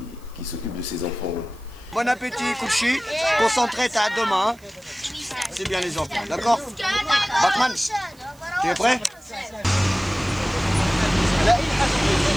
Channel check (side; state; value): right; noise; hiss, 28 dB below the sound